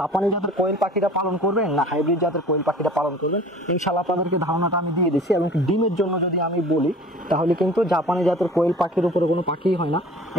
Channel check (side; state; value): both; normal; correlation 0.45